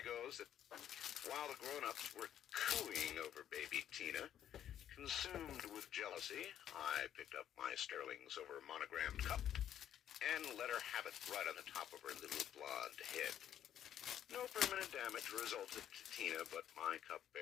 goes that while the grown-ups were cooing over baby Tina, consumed with jealousy, I picked up my sterling silver monogrammed cup and let her have it right on the top of her little blonde head. No permanent damage resulted to Tina, but my cup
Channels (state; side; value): quieter; right; 10.4 dB